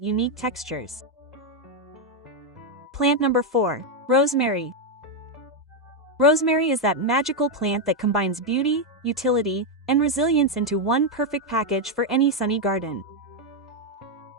unique textures. Plant number 4, Rosemary. Rosemary is that magical plant that combines beauty, utility, and resilience into one perfect package for any sunny garden.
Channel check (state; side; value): normal; both; correlation 0.03